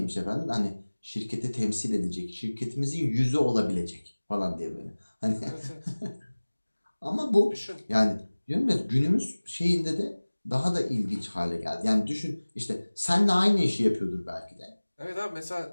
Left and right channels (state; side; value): inverted; both; correlation -1.00